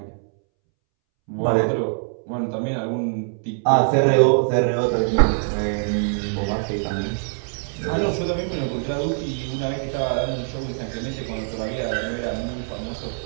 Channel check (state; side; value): silent; left; 63 dB below the other